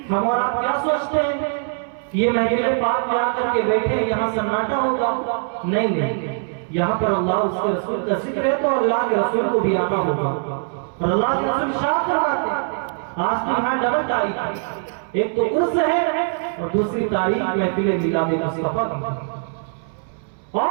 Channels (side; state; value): left; silent; 64 dB below the other